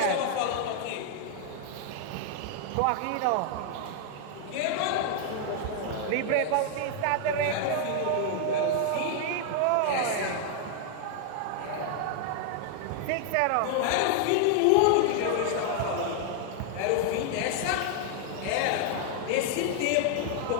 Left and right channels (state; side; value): different; both; correlation 0.00